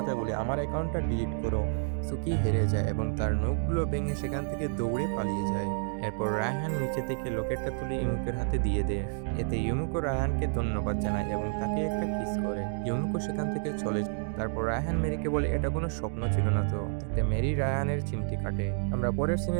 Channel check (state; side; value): silent; left; digital silence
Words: বলে আমার অ্যাকাউন্টটা ডিলিট করো। সুকি হেরে যায় এবং তার নখগুলো ভেঙে সেখান থেকে দৌড়ে পালিয়ে যায়। এরপর রায়হান নিচে থেকে লকেটটা তুলে ইমুকের হাতে দিয়ে দেয়। এতে ইমুকো রায়হানকে ধন্যবাদ জানায় এবং তাকে একটা কিস করে। ইমুকো সেখান থেকে চলে যায়। তারপর রায়হান মেরিকে বলে এটা কোনো স্বপ্ন ছিল না তো। তাতে মেরি রায়হানের চিমটি কাটে। আমরা পরের